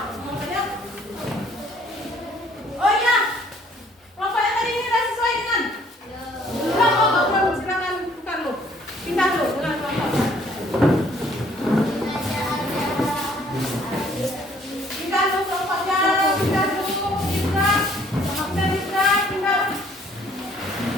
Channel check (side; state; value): both; normal; correlation 0.60